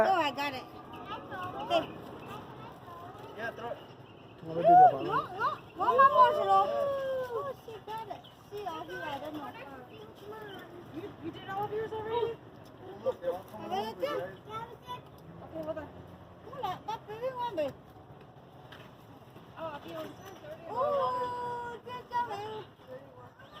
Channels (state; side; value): identical; both; correlation 1.00